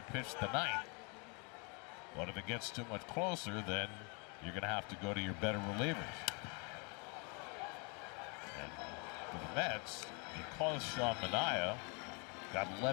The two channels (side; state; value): right; quieter; 34.0 dB